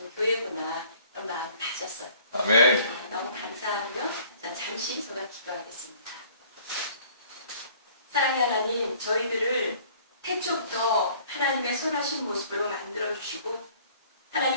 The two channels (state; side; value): inverted; both; correlation -0.54